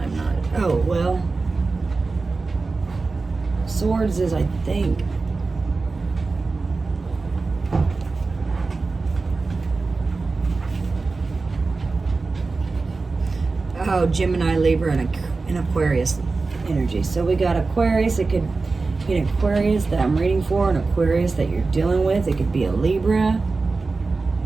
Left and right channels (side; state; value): left; quieter; 3.9 dB